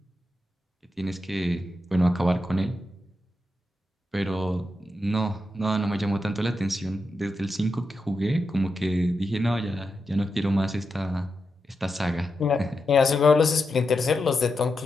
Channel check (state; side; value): normal; both; correlation 0.87